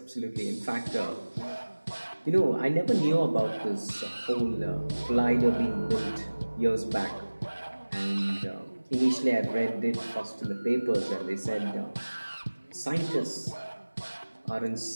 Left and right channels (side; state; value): both; inverted; correlation -1.00